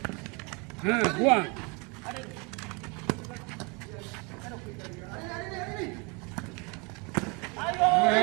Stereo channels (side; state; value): left; quieter; 30.6 dB